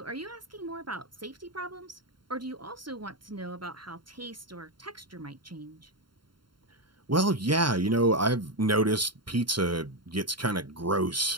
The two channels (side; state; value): left; late; 0.72 ms